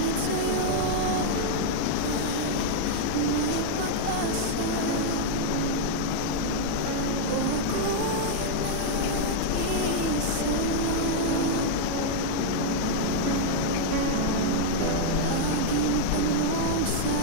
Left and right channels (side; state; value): both; different; correlation -0.01